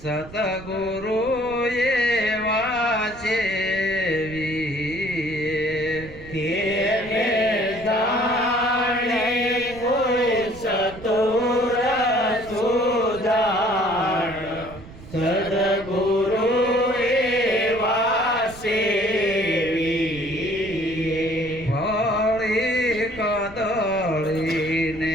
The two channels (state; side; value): noise; right; rumble, 17 dB below the sound